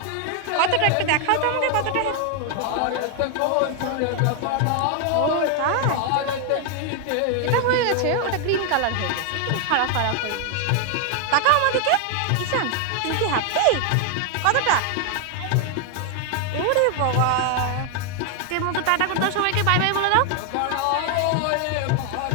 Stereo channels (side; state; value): both; different; correlation 0.00